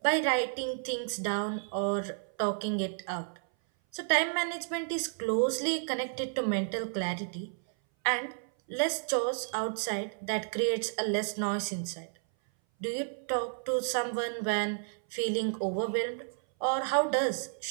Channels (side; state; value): left; silent; 57 dB below the other